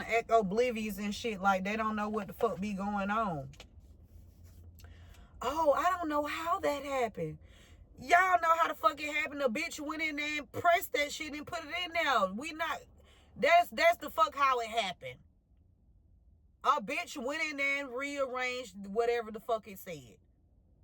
act oblivious and shit like they don't know what the fuck be going on. Oh, I don't know how that happened. Y'all know how the fuck it happened. A bitch went in there and pressed that shit and put it in there. That's the fuck how it happened. A bitch went in there and rearranged whatever the fuck it said.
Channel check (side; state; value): both; identical; correlation 1.00